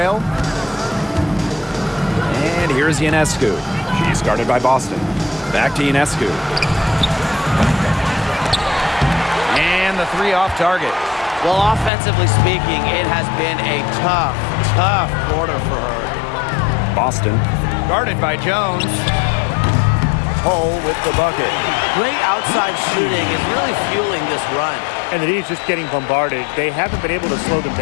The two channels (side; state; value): right; drops out; at 11.9 s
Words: And here's Ionescu. She's guarded by Boston. Back to Ionescu. And the three off target. Well, offensively speaking, it has been a tough quarter for her. Boston, guarded by Jones. Hull with the bucket. Great outside shooting is really fueling this run. And the D's just getting bombarded. They haven't been able to slow them